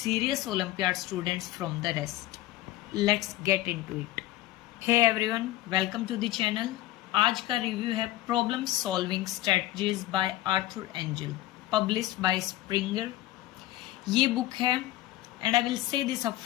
olympiad students from the rest. Let's get into it. Hey everyone, welcome to the channel. आज का रिव्यू है problem solving strategies by Arthur Engel, published by Springer. ये book है and I will say this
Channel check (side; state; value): right; quieter; 16.1 dB